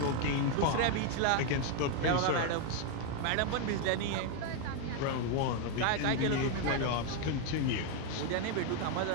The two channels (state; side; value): different; both; correlation 0.01